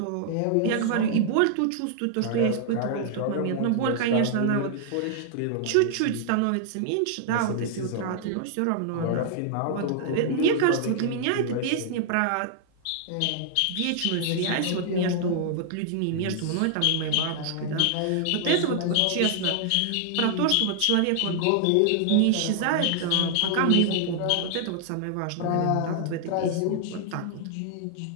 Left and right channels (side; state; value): both; different; correlation -0.01